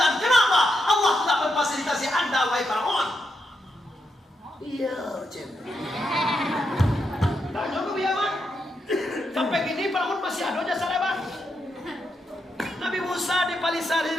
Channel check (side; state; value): both; normal; correlation 0.83